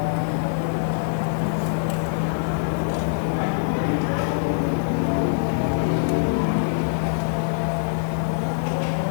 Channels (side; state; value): right; silent; digital silence